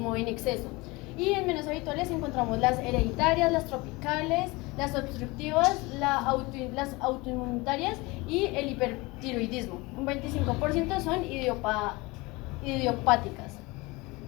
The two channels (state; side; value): quieter; right; 23.6 dB